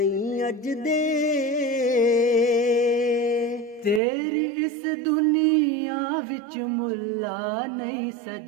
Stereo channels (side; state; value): left; drops out; at 4.0 s